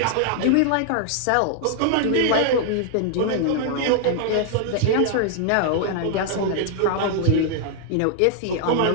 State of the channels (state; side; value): different; both; correlation 0.00